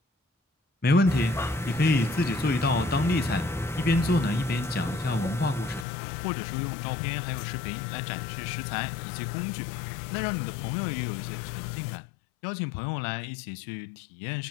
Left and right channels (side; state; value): right; drops out; at 5.9 s